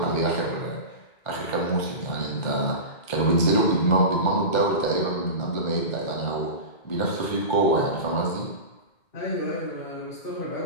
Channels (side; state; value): right; late; 2.1 ms